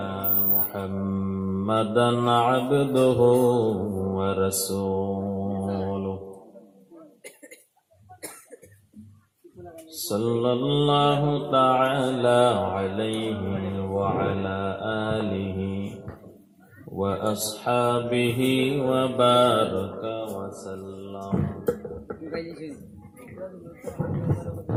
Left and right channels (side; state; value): both; identical; correlation 1.00